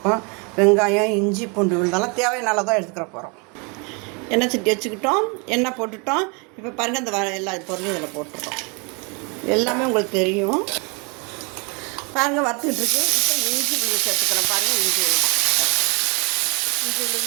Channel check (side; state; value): left; quieter; 32.4 dB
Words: வெங்காயம், இஞ்சி, பூண்டு விழுந்தாலும் தேவையான தான் எடுத்துக்கிற போகிறோம். எண்ணெய் சட்டி வச்சுக்கிட்டோம், எண்ணெய் போட்டுட்டோம். இப்போ பாருங்கள், இந்த எல்லா பொருளையும் இதில் போட்டுட்டோம். எல்லாமே உங்களுக்கு தெரியும். பாருங்கள், வறுத்துக்கிட்டு இருக்கு. இப்போ இஞ்சி விழுது சேர்த்துக்கிறோம். பாருங்கள், இஞ்சி